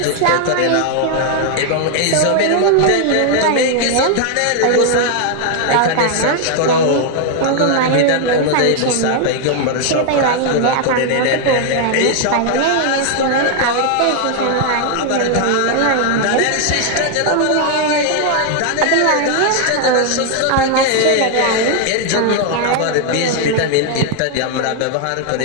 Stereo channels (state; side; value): different; both; correlation 0.00